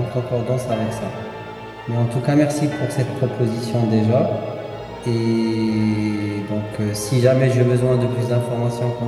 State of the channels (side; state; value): both; identical; correlation 1.00